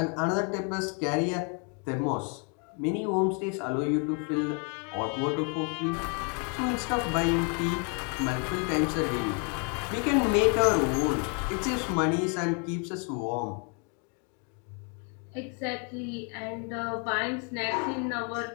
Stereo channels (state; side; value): quieter; right; 38.2 dB